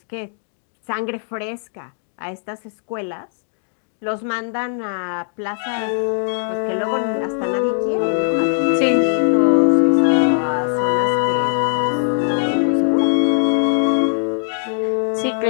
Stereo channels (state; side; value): silent; right; digital silence